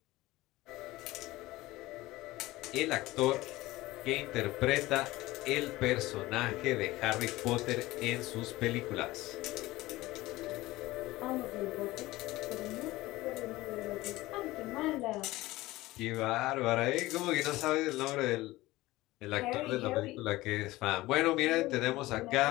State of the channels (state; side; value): quieter; right; 18.5 dB